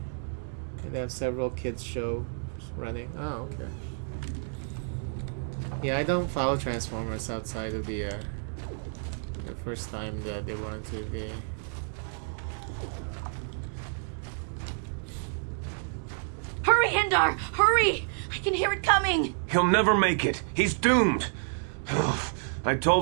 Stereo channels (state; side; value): silent; left; 58 dB below the other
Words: And they have several kids shows running. Oh, okay. Yeah, I don't follow Transformers outside of the first time that they were on TV. Hurry, Hindar! Hurry! I can hear it coming! He'll never make it. He's doomed. I